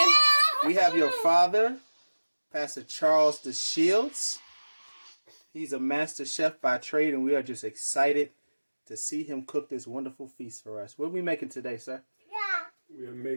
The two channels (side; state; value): both; inverted; correlation -1.00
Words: We have your father, Pastor Charles DeShields. He's a master chef by trade, and we are just excited to see him cook this wonderful feast for us. What are we making today, sir? We are